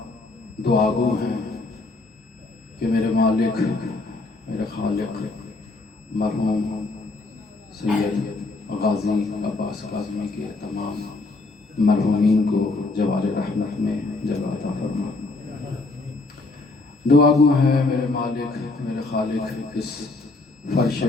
دعا گو ہیں کہ میرے مالک میرے خالق مرحوم سید غازی عباس کاظمی کے تمام مرحومین کو جوار رحمت میں جگہ عطا فرما۔ دعا گو ہے میرے مالک میرے خالق اس فرش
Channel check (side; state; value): right; quieter; 3.3 dB